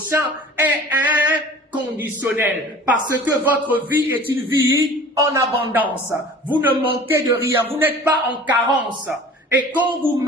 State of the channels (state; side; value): normal; both; correlation 0.44